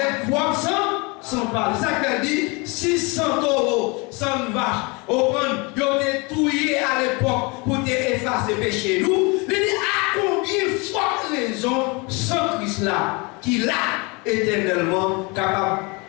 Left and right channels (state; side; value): quieter; right; 28.2 dB